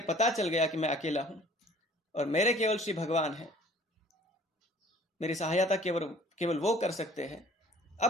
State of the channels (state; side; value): normal; both; correlation 0.52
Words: पता चल गया कि मैं अकेला हूं और मेरे केवल श्री भगवान हैं। मेरी सहायता केवल वो कर सकते हैं।